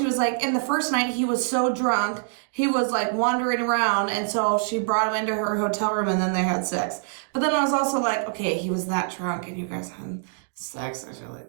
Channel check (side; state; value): left; silent; digital silence